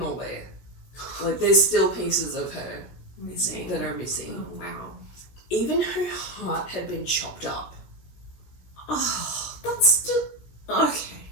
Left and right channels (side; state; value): right; late; 17 ms